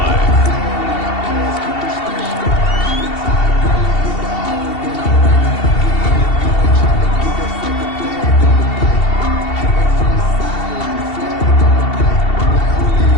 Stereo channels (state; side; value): late; right; 2.7 ms